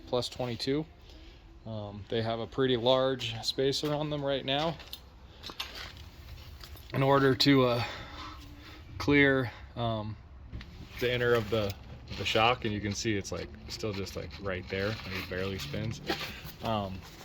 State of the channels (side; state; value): both; identical; correlation 1.00